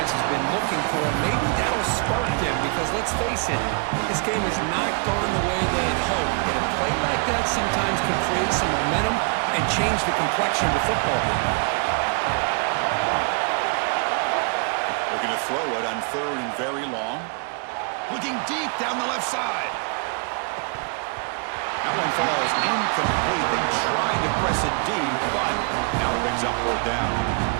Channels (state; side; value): quieter; left; 36.4 dB